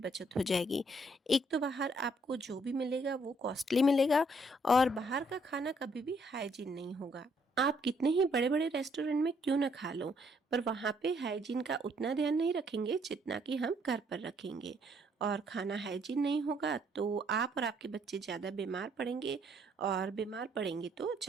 हो जाएगी। एक तो बाहर आपको जो भी मिलेगा वो कॉस्टली मिलेगा, और बाहर का खाना कभी भी हाइजीन नहीं होगा। आप कितने ही बड़े बड़े रेस्टोरेंट में क्यों ना खा लो, पर वहाँ पे हाइजीन का उतना ध्यान नहीं रखेंगे जितना कि हम घर पर रखेंगे। और खाना हाइजीन नहीं होगा तो आप और आपके बच्चे ज़्यादा बीमार पड़ेंगे, और बीमार पड़ेंगे तो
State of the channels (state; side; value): normal; both; correlation 0.68